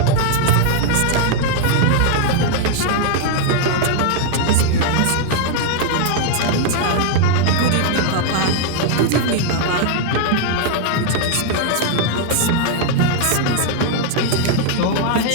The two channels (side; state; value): both; different; correlation 0.00